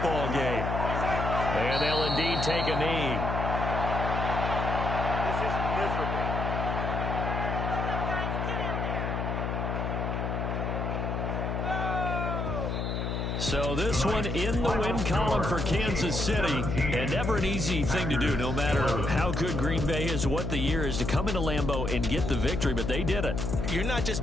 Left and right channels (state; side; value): noise; left; hum, 2 dB below the sound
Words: game. And they'll indeed take a knee. This is miserable. So this one in the win column for Kansas City, and never an easy thing to do, no matter how good Green Bay is, what the year is, to come into Lambeau and get the victory, but they did it. You're not